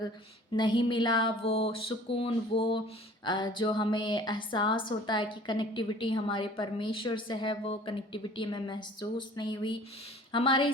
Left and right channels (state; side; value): normal; both; correlation 0.48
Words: नहीं मिला, वो सुकून, वो जो हमें एहसास होता है कि कनेक्टिविटी हमारे परमेश्वर से है, वो कनेक्टिविटी हमें महसूस नहीं हुई। हमारे